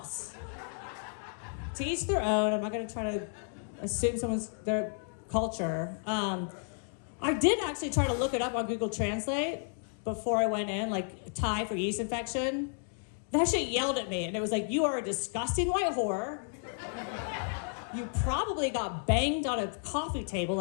To each their own. I'm not going to try to assume their culture. I did actually try to look it up on Google Translate before I went in, like Thai for yeast infection. That shit yelled at me, and it was like, you are a disgusting white whore. You probably got banged on a coffee table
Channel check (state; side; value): silent; right; 56 dB below the other